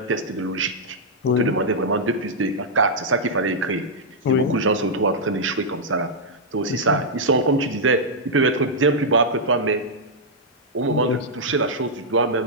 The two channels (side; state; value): both; normal; correlation -0.07